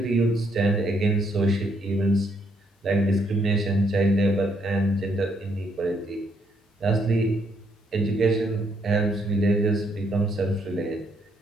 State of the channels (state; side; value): normal; both; correlation 0.72